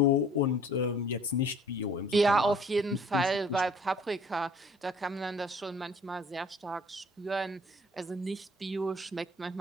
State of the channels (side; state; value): both; normal; correlation 0.54